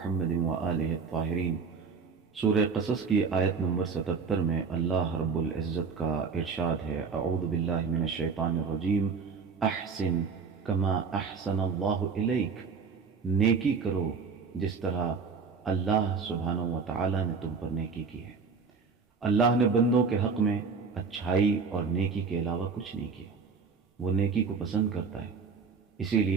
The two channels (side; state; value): left; quieter; 5.2 dB